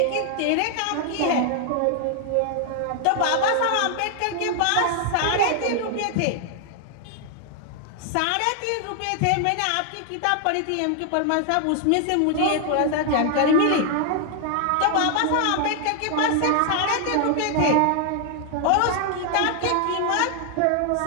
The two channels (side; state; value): both; different; correlation 0.00